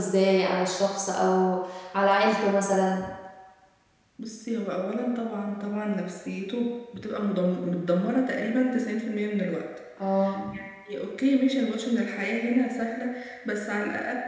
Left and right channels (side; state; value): both; identical; correlation 1.00